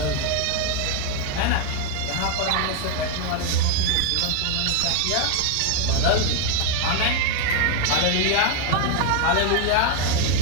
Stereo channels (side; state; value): both; different; correlation 0.00